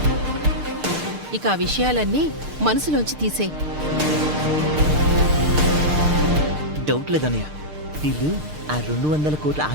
ఇక ఆ విషయాలన్నీ మనసులోంచి తీసే. డౌట్ లేదన్నయ్య, వీళ్ళు ఆ 200 కోట్ల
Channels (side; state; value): left; late; 6.6 ms